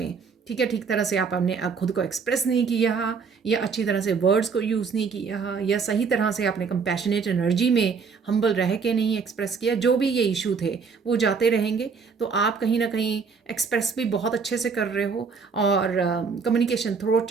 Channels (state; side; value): quieter; left; 5.4 dB